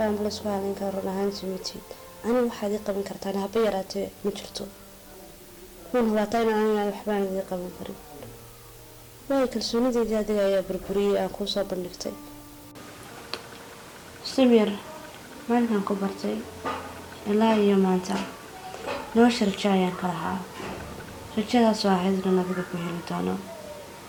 amba laysku halayn kara run ahaantii matid aniga waxaad ii qaban kartaan haba yaraatee ma jirto wuuna hubaataa inaan aniga waxbaanad ii qaban karin waayo kalsoonideedii adiga ayaa burburiyey aan kuu soo bandhigtay samir maalinkan ku bartay ilaa iyo maanta nolosha rajo ayaan ka lahaa rajadaasoo ahayd inan adiga ku heli doono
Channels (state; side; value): identical; both; correlation 1.00